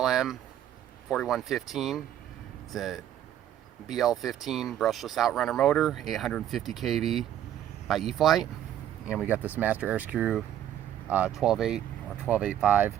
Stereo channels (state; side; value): quieter; left; 11.2 dB